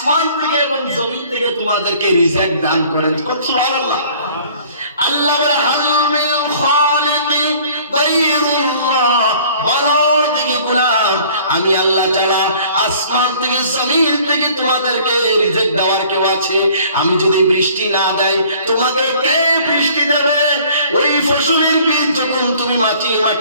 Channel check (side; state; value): both; inverted; correlation -0.53